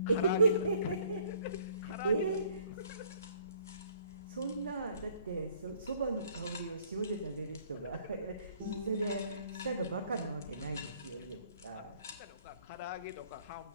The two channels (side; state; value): both; inverted; correlation -0.60